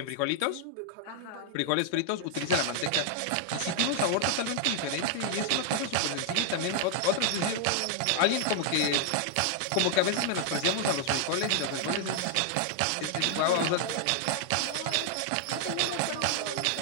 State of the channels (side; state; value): both; different; correlation 0.00